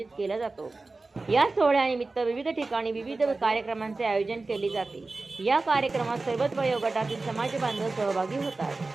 केला जातो। या सोहळ्यानिमित्त विविध ठिकाणी विविध कार्यक्रमांचे आयोजन केले जाते। या कार्यक्रमात सर्वच वयोगटातील समाज बांधव सहभागी होतात।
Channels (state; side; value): quieter; left; 3.5 dB